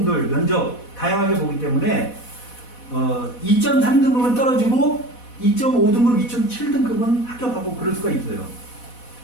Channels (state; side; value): late; right; 4.1 ms